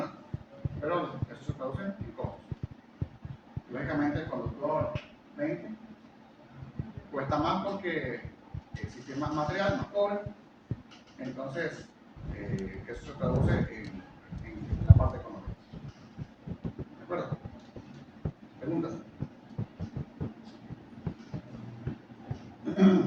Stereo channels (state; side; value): identical; both; correlation 1.00